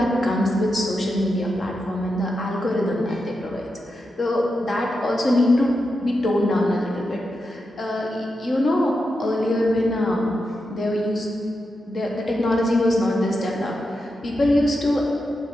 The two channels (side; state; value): both; normal; correlation 0.87